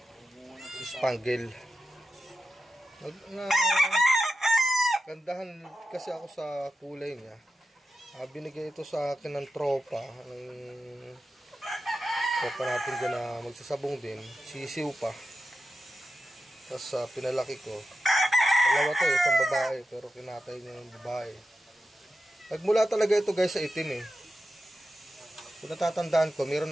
spangle. Gandahan kasi ako sa kulay niya. Binigay ito sa akin ng tropa natin dyan na magsasabong din, sisiw pa. Tapos pinalaki ko. Dalawa to, isang babae, pero kinatay niya yung babae. Nagmula talaga ito guys sa itim eh. Kung natatandaan ko, meron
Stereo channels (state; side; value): normal; both; correlation 0.91